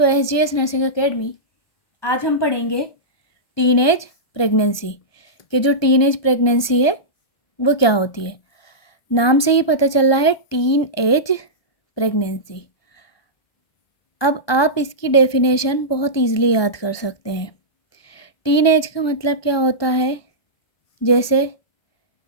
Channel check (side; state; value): right; late; 1.2 ms